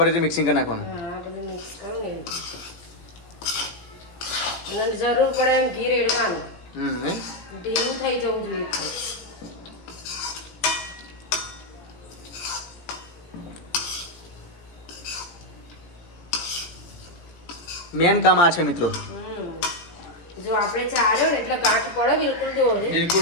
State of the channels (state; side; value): late; right; 17 ms